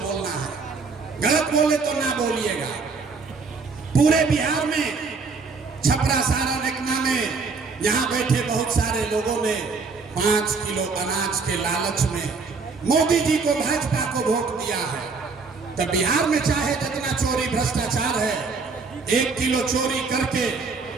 है। गलत बोले तो ना बोलिएगा। पूरे बिहार में छपरा सारण एकमा में यहाँ बैठे बहुत सारे लोगों ने 5 किलो अनाज के लालच में मोदी जी को, भाजपा को वोट दिया है। तो बिहार में चाहे जितना चोरी भ्रष्टाचार है, 1 किलो चोरी करके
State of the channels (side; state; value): left; quieter; 4.6 dB